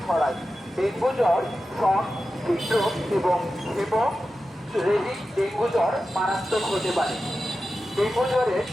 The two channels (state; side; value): normal; both; correlation 0.92